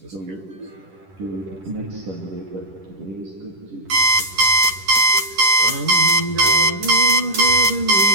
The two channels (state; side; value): late; left; 10 ms